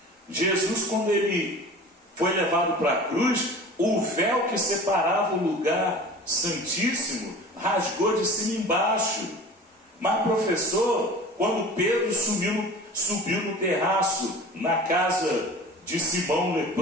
Jesus, quando ele foi levado para a cruz, o véu que separava o lugar santíssimo rasgou de cima embaixo. Mas professor, quando Pedro subiu no terraço na casa de Simão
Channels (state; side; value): normal; both; correlation 0.40